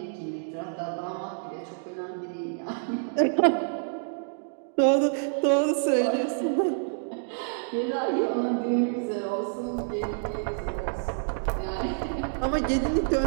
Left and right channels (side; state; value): left; silent; digital silence